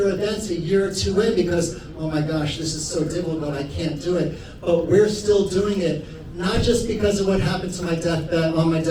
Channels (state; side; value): identical; both; correlation 1.00